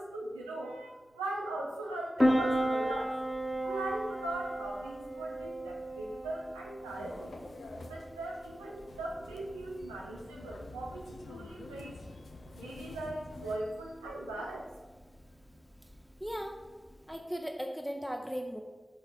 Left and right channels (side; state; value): both; normal; correlation 0.93